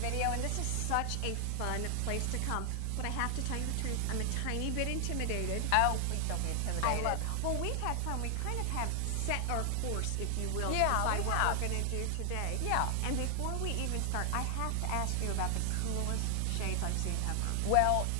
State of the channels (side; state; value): both; different; correlation 0.00